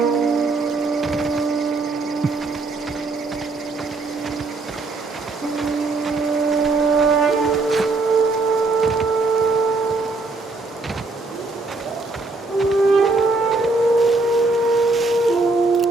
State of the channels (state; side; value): quieter; left; 3.5 dB